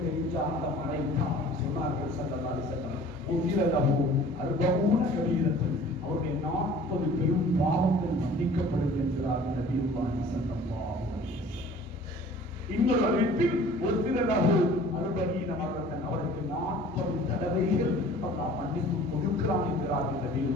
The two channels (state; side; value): normal; both; correlation 0.48